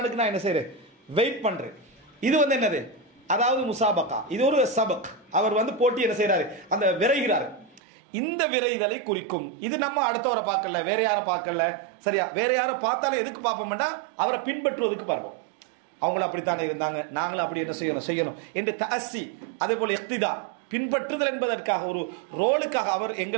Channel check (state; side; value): drops out; left; at 7.8 s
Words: நான் என்ன செய்றேன்? வெயிட் பண்றேன். இது வந்து என்னது? அதாவது முசாபகா. இது ஒரு சபக். அவர் வந்து போட்டி என்ன செய்யறாரு? அந்த விரைகிறாரு. இந்த விரைதலை குறிக்கும். இது நம்ம அடுத்தவரை பார்க்கல, வேற யாரை பார்க்கல. சரியா? வேற யாரை பார்த்தாலும் எதுக்கு பார்ப்போம்னா அவரை பின்பற்றுவதற்கு பார்ப்போம். அவங்களும் அப்படித்தானே இருந்தாங்க, நாங்களும் அப்படி என்ன செய்யணும் என்று தஅஸ்ஸி, அதே போல இக்திதா, பின்பற்றுதல் என்பதற்காக, ஒரு ரோலுக்காக, அவர்